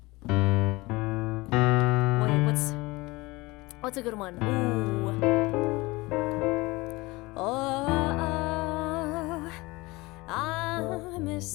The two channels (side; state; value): right; quieter; 22.5 dB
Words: Wait, what's a good one? Ooh. Oh, I'm